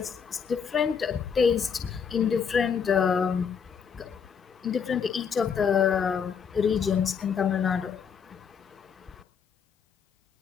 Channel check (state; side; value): quieter; right; 6.7 dB